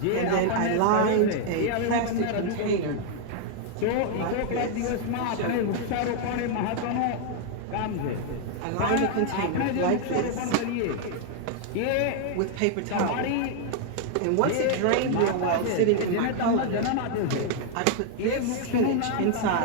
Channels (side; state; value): both; different; correlation 0.00